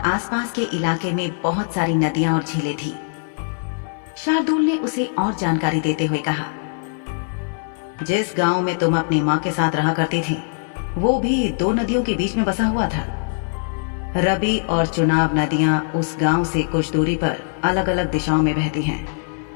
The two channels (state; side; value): silent; right; 61 dB below the other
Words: के इलाके में बहुत सारी नदियां और झीलें थी। शार्दुल ने उसे और जानकारी देते हुए कहा, जिस गांव में तुम अपनी मां के साथ रहा करती थी वो भी 2 नदियों के बीच में बसा हुआ था। रबी और चुनाव नदियां उस गांव से कुछ दूरी पर अलग अलग दिशाओं में बहती हैं।